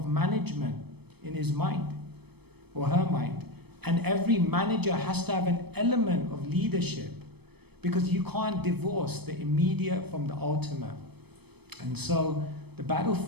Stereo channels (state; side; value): late; left; 0.97 ms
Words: management in his mind, or her mind. And every manager has to have an element of leadership, because you can't divorce the immediate from the ultimate. And so the